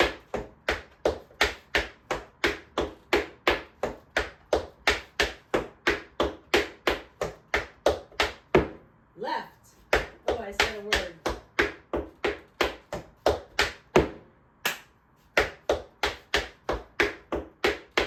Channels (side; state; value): both; identical; correlation 1.00